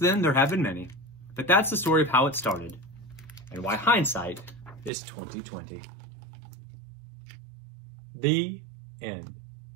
there have been many, but that's the story of how it started and why hindsight is 20/20. The end.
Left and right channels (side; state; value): left; drops out; at 4.9 s